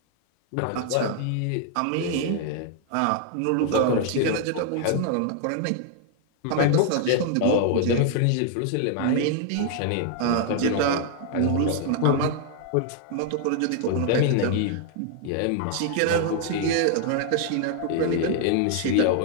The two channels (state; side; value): different; both; correlation 0.00